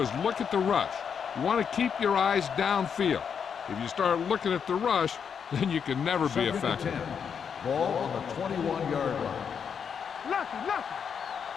look at the rush. You want to keep your eyes downfield. If you start looking at the rush, then you can never be effective. Ball on the 21-yard line.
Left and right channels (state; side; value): quieter; right; 7.0 dB